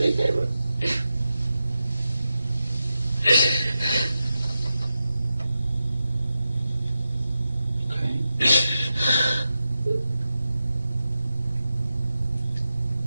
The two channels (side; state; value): both; inverted; correlation -0.90